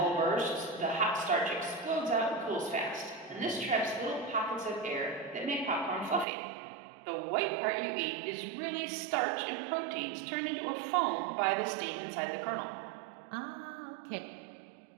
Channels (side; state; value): left; drops out; at 6.2 s